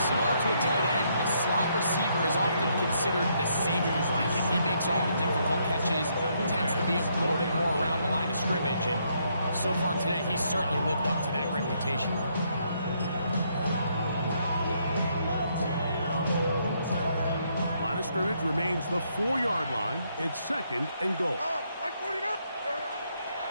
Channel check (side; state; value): both; inverted; correlation -0.73